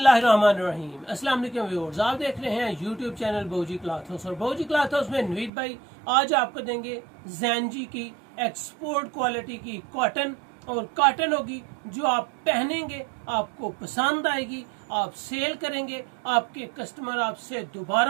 अस्सलाम वालेकुम व्यूअर्स, आप देख रहे हैं यूट्यूब चैनल बौजी क्लॉथ हाउस और बौजी क्लॉथ हाउस में नवीद भाई आज आपको देंगे ज़ैनजी की एक्सपोर्ट क्वालिटी की कॉटन। और कॉटन होगी जो आप पहनेंगे आपको पसंद आएगी, आप सेल करेंगे, आपके कस्टमर आपसे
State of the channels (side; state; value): left; drops out; at 5.5 s